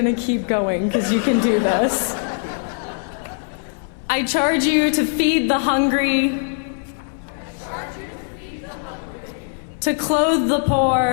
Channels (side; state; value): right; silent; 65 dB below the other